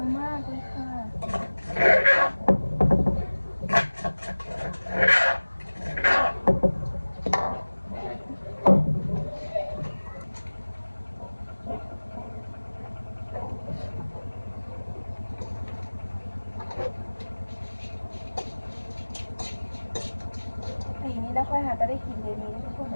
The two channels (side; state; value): both; inverted; correlation -1.00